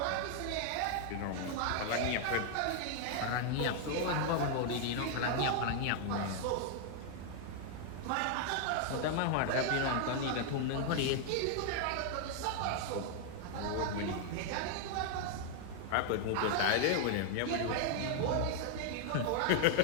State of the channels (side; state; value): both; different; correlation 0.00